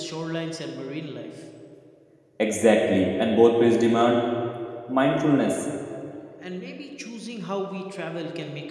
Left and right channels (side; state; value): both; identical; correlation 1.00